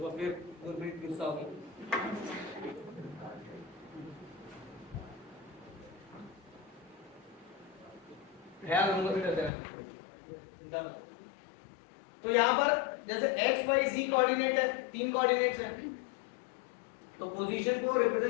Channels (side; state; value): right; drops out; at 9.5 s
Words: फिर गुरप्रीत गुस्सा होगी। ख्याल रखूंगा फिर चिंता मत। तो यहाँ पर जैसे x, y, z कोऑर्डिनेट है, 3 कोऑर्डिनेट्स हैं, तो पोजीशन को